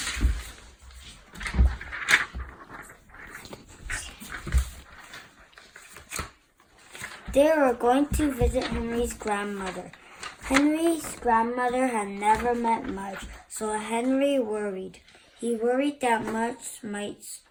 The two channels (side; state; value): both; identical; correlation 1.00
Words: They were going to visit Henry's grandmother. Henry's grandmother had never met Mudge, so Henry worried. He worried that Mudge might